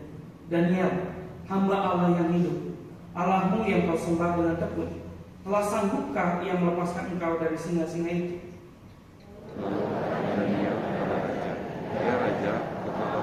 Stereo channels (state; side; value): identical; both; correlation 1.00